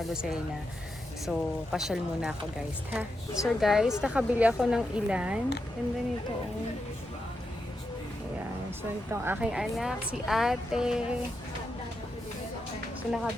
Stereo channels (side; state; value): both; normal; correlation 0.86